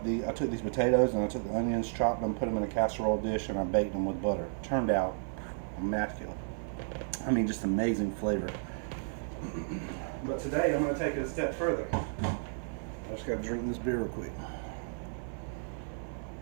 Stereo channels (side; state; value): left; silent; 56 dB below the other